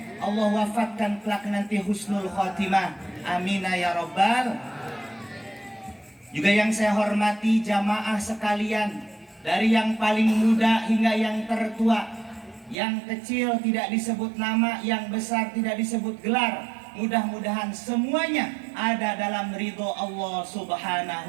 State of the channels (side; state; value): left; drops out; at 12.8 s